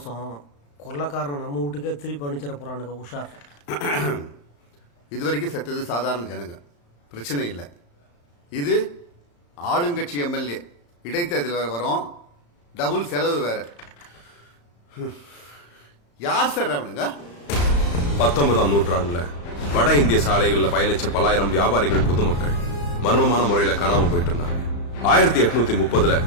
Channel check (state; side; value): late; right; 35 ms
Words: கொள்ளக்காரனை நம்ம வீட்டுக்கே திருப்பி அனுப்பிச்சிட போறானுங்க. உஷார். இது வரைக்கும் செத்தது சாதாரண ஜனங்க, பிரச்சனை இல்லை. இது ஆளுங்கட்சி எம்எல்ஏ, இடைத்தேர்தல் வேற வரும், டபுள் செலவு வேற. யார் சார் அவனுங்க? 19ஆம் நூற்றாண்டுல வட இந்திய சாலைகள்ல பயணிச்ச பலாயிரம் வியாபாரிகள் பொதுமக்கள் மர்மமான முறையில காணாம போயிட்டு இருந்தாங்க. 1830ல